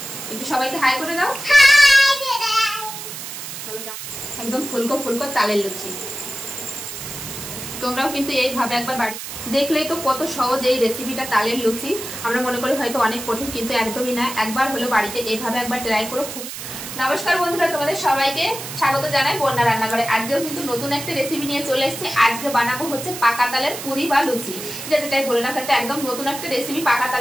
একটু সবাইকে হাই করে দাও। একদম ফুলকো ফুলকো তালের লুচি। তোমরাও কিন্তু এইভাবে একবার বাড়ি দেখলেই তো কত সহজ এই রেসিপিটা তালের লুচি। আমরা মনে করি হয়তো অনেক কঠিন, কিন্তু একদমই না। একবার হলো বাড়িতে এইভাবে একবার ট্রাই করো। খুবই নমস্কার বন্ধুরা, তোমাদের সবাইকে স্বাগত জানাই বন্যা রান্নাঘরে। আজকেও কিন্তু নতুন একটা রেসিপি নিয়ে চলে এসেছি। আজকে বানাবো হচ্ছে পাকা তালের পুরি বা লুচি, যেটাই বলে না একটা একদম নতুন একটা রেসিপি। পাকা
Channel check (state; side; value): noise; right; hiss, 9 dB below the sound